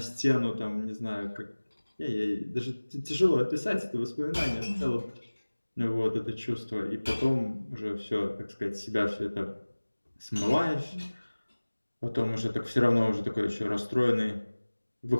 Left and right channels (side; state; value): both; inverted; correlation -1.00